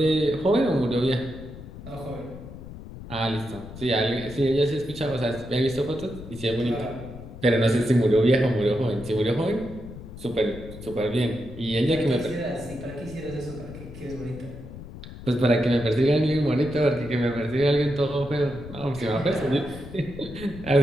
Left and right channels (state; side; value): noise; left; rumble, 14 dB below the sound